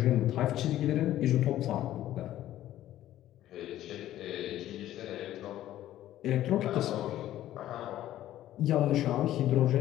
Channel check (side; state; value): right; quieter; 13.4 dB